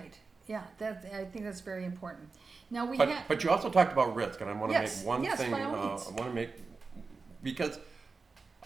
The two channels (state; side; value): quieter; left; 4.3 dB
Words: Yeah, I think that's very important. Now But you also talked about risk, and I want to Yes, make one yes, thing. by all I means. want to make, because